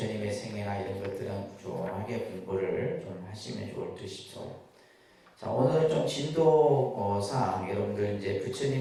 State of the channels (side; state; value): both; identical; correlation 1.00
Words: 생애나 이런 것들은 꾸준하게 공부를 좀 하시면 좋을 듯 싶어요. 자, 오늘은 좀 진도상 여러분들 이제